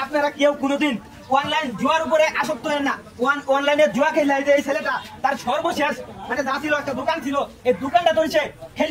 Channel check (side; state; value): both; identical; correlation 1.00